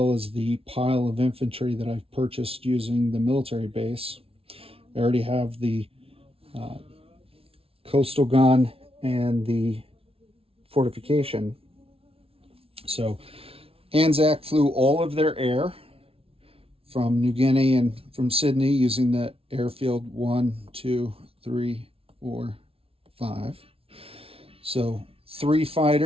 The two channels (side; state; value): left; late; 0.27 ms